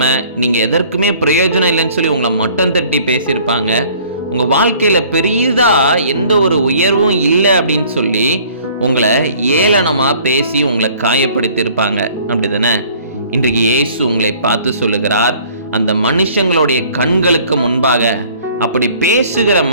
நீங்க எதற்குமே பிரயோஜனம் இல்லைன்னு சொல்லி உங்களை மட்டம் தட்டி பேசியிருப்பாங்க. உங்க வாழ்க்கையில பெரியதா எந்த ஒரு உயர்வும் இல்லை அப்படின்னு சொல்லி உங்களை ஏளனமா பேசி உங்களை காயப்படுத்தியிருப்பாங்க, அப்படிதானே? இன்றைக்கு இயேசு உங்களை பார்த்து சொல்லுகிறார், அந்த மனுஷங்களுடைய கண்களுக்கு முன்பாக, அப்படி பேசுகிற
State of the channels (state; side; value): inverted; both; correlation -0.54